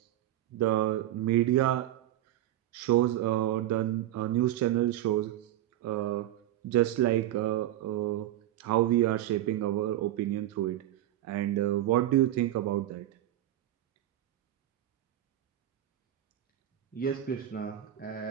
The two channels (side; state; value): left; quieter; 13.4 dB